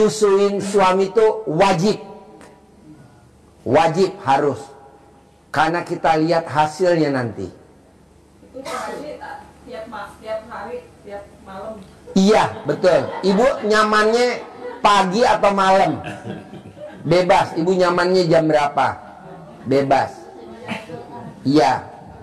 suami itu wajib. Wajib harus. Karena kita lihat hasilnya nanti. Itu tiap hari, tiap malam. Iya, betul. Ibu nyamannya pagi atau malam? Bebas. Ibu nyamannya jam berapa? Bebas. Iya.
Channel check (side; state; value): both; identical; correlation 1.00